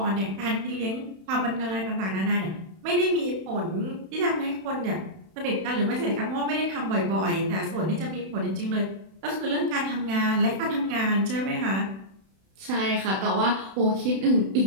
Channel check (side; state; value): left; late; 31 ms